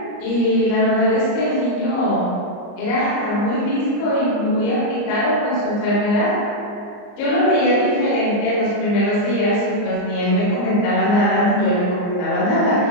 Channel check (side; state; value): right; late; 34 ms